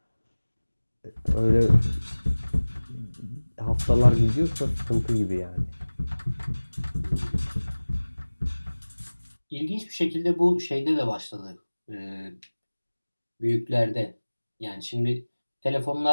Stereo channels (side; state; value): both; inverted; correlation -1.00